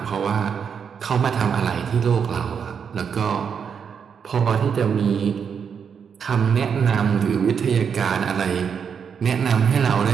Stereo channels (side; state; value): left; quieter; 6.9 dB